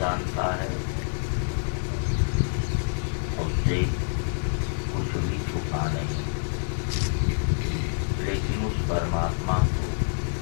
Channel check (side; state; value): right; silent; digital silence